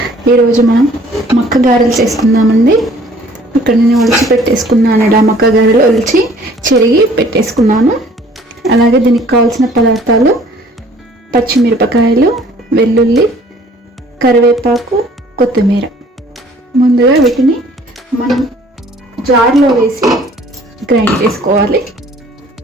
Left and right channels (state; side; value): normal; both; correlation 0.55